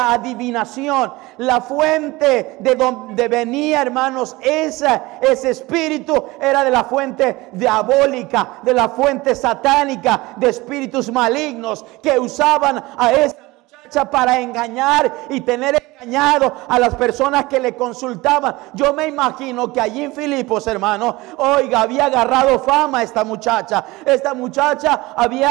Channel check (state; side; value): quieter; left; 21.1 dB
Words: adivinación, la fuente de donde venía, hermanos, ese espíritu era de la fuente diabólica, de la fuente satánica, de espíritus malignos que usaban a esa muchacha para engañar y tener engañado a las personas que le consultaban. Yo me imagino que allí en Filipos, hermano, oiga, había agarrado fama esta muchacha. Esta muchacha